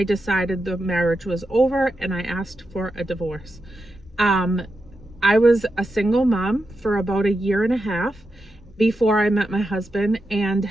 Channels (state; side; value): normal; both; correlation 0.88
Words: decided the marriage was over and I asked for a divorce. I was a single mom for about 1.5 years before I met my husband, and